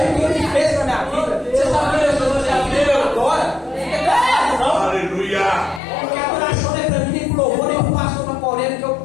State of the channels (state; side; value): drops out; right; at 5.8 s